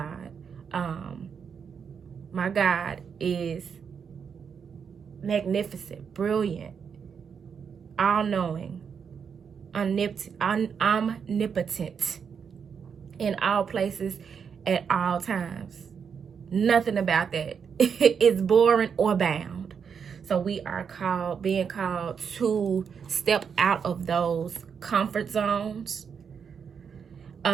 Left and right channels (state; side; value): quieter; left; 6.7 dB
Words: My God is magnificent, brilliant, all-knowing, omnipotent in all places at all times. Nothing about that is boring or bound. So we are being called to step out of those comfort zones,